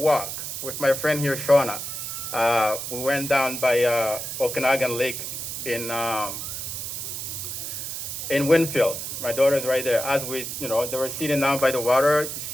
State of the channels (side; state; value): right; noise; hiss, 6 dB below the sound